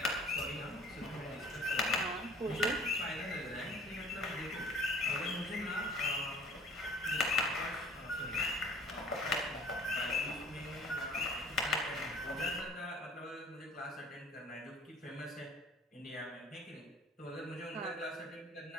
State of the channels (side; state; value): both; normal; correlation 0.49